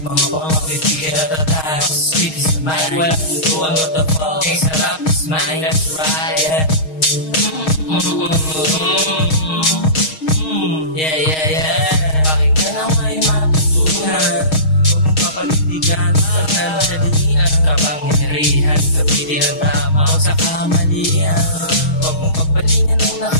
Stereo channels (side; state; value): right; late; 6.4 ms